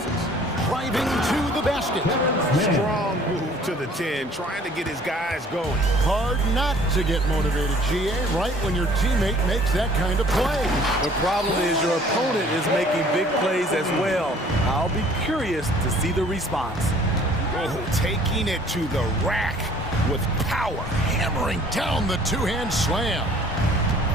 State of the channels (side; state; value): both; normal; correlation 0.54